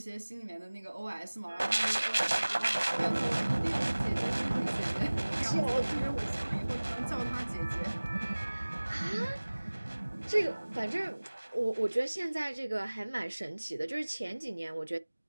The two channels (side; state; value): both; inverted; correlation -1.00